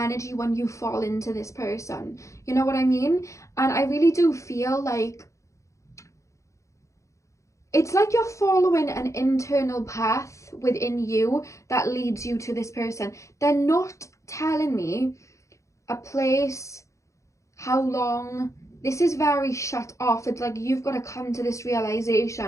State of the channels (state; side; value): late; right; 0.15 ms